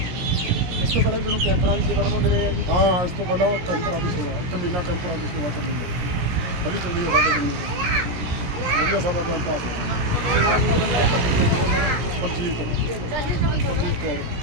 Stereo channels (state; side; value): late; left; 17 ms